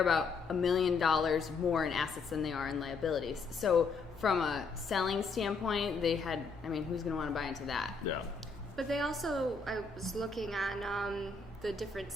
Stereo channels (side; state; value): right; quieter; 4.4 dB